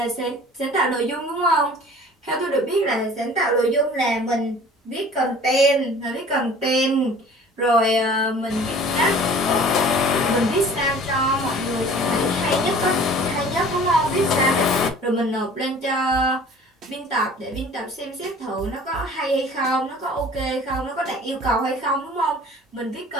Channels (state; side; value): normal; both; correlation 0.47